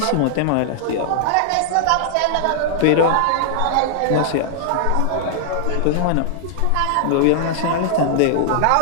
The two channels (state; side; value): different; both; correlation -0.01